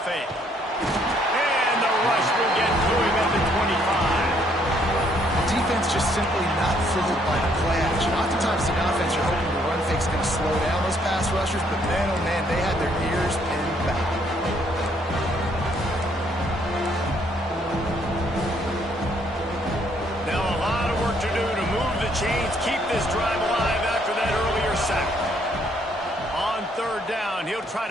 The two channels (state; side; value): normal; both; correlation 0.68